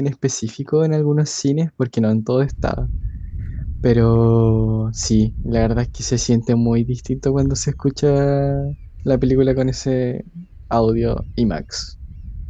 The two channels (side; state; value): both; identical; correlation 1.00